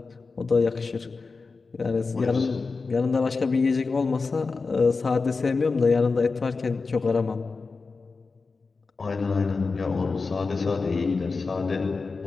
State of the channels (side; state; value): right; quieter; 4.3 dB